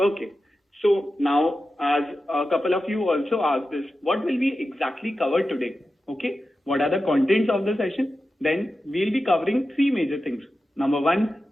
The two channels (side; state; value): both; normal; correlation 0.92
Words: So now, as a couple of you also asked this, what will we exactly cover today? Okay. What are the contents of the session? Then we'll be covering three major things. Number one,